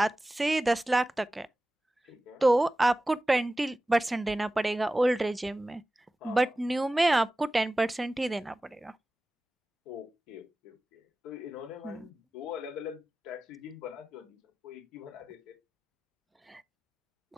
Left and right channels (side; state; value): both; normal; correlation 0.96